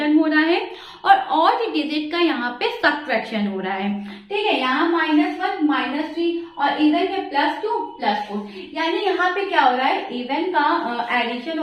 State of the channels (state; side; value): identical; both; correlation 1.00